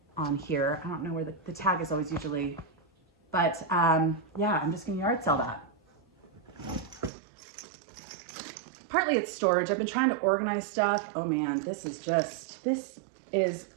on here. I don't know where the tag is always usually, but yeah, I'm just gonna yard sell that. Partly it's storage. I've been trying to organize stuff. Oh man,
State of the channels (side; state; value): left; drops out; at 7.1 s